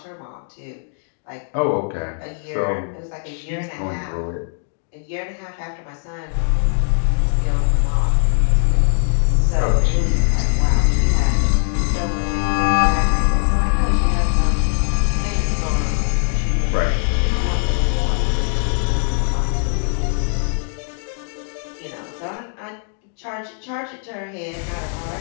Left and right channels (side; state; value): right; silent; 58 dB below the other